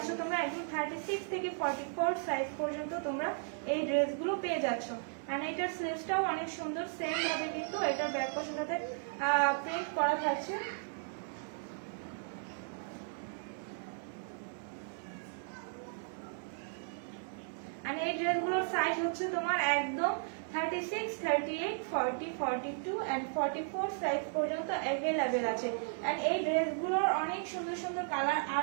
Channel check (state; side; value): silent; left; digital silence